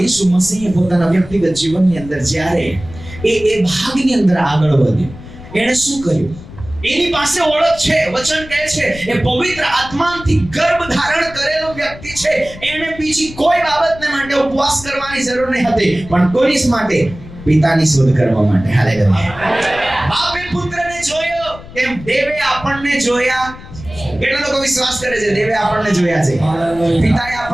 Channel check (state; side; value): noise; left; rumble, 16 dB below the sound